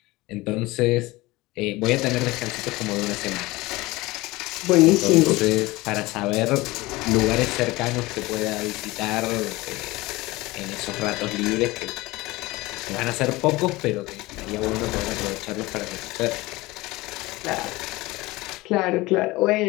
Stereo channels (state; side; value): quieter; right; 20.7 dB